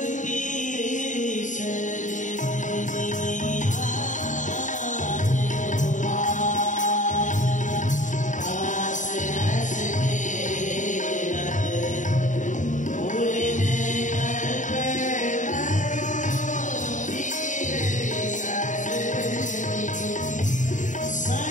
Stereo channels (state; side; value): late; right; 0.36 ms